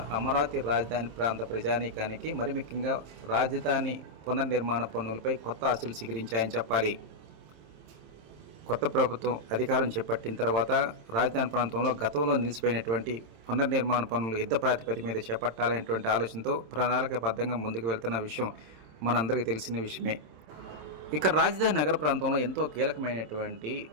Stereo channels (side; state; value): left; late; 26 ms